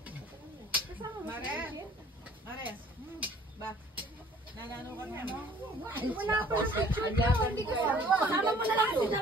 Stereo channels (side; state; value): both; normal; correlation 0.55